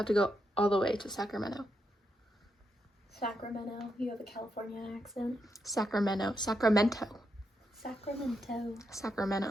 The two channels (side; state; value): both; normal; correlation 0.82